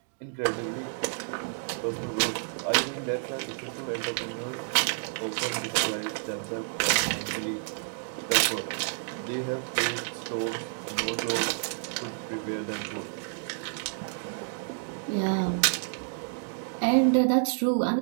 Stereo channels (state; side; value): silent; left; digital silence